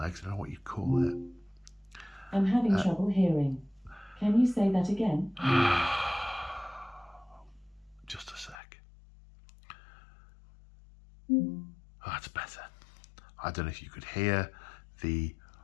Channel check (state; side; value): drops out; right; at 8.6 s